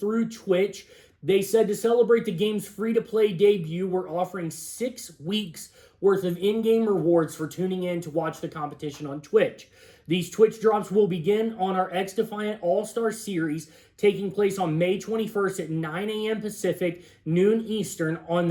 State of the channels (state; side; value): identical; both; correlation 1.00